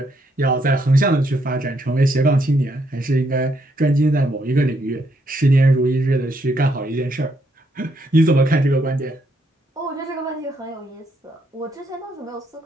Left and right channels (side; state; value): both; normal; correlation 0.74